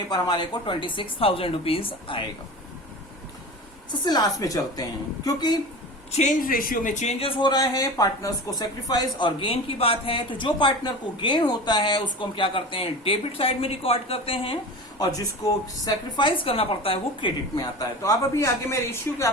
पर हमारे को 26,000 रुपीज आएगा। सबसे लास्ट में चलते हैं, क्योंकि चेंज रेशियो में चेंजेस हो रहा है, पार्टनर्स को सेक्रीफाइस और गेन की बात है, तो जो पार्टनर को गेन होता है उसको हम क्या करते हैं, डेबिट साइड में रिकॉर्ड करते हैं, और जिसको सेक्रीफाइस करना पड़ता है वो क्रेडिट में आता है। तो अब अभी आगे मैं रेशियो के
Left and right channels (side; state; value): both; normal; correlation 0.32